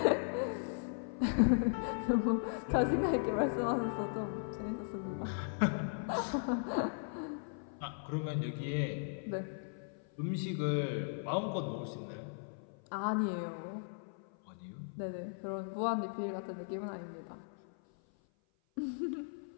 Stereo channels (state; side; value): silent; right; 53 dB below the other